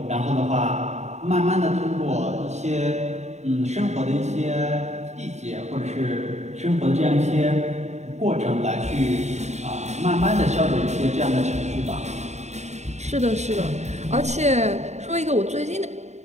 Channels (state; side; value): late; left; 0.33 ms